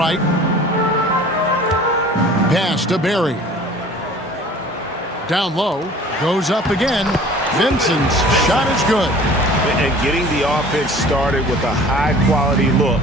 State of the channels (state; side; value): normal; both; correlation 0.47